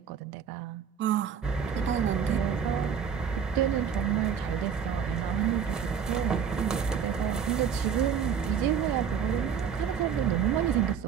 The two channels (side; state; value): left; quieter; 7.3 dB